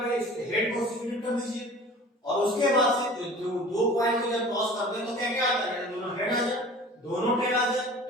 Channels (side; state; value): both; normal; correlation 0.42